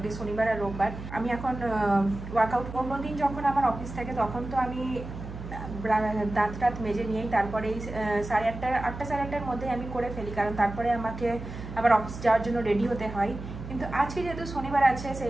শনিবার আর রোববার। আমি এখন ওয়ার্কআউট অন্যদিন যখন আমার অফিস থাকে তখন তো আমি দাঁত টাত মেজে নিয়েই তারপরে সাড়ে আটটা সাড়ে আটটার মধ্যে আমি করে ফেলি, কারণ তারপরে আমাকে আবার অফিস যাওয়ার জন্য রেডি হতে হয়। কিন্তু আজকে যেহেতু শনিবার আছে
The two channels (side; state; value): right; noise; hum, 10 dB below the sound